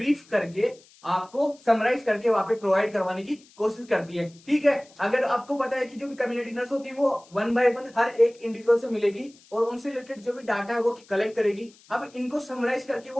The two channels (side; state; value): left; noise; hiss, 27 dB below the sound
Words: करके आपको समराइज करके वहां पे प्रोवाइड करवाने की कोशिश करती है। ठीक है, अगर आपको पता है कि जो भी कम्युनिटी नर्स होती है वो वन बाय वन हर एक इंडिविजुअल से मिलेगी और उनसे रिलेटेड जो भी डाटा है वो कलेक्ट करेगी। अब इनको समराइज करके